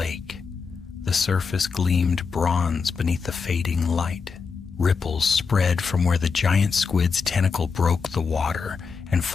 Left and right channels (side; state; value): right; quieter; 5.4 dB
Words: The surface gleamed bronze beneath the fading light. Ripples spread from where the giant squid's tentacle broke the water, and